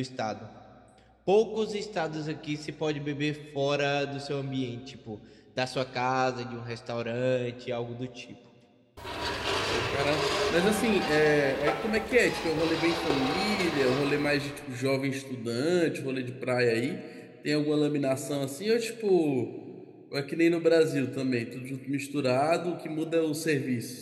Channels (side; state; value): both; identical; correlation 1.00